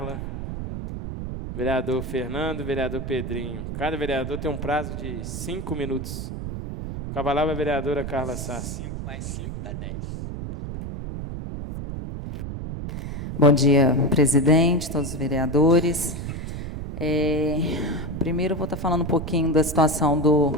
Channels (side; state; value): right; noise; rumble, 6 dB below the sound